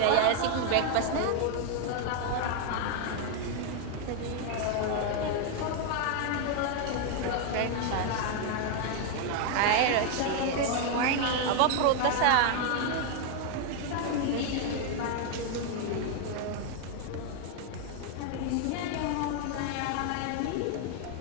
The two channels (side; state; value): both; different; correlation 0.01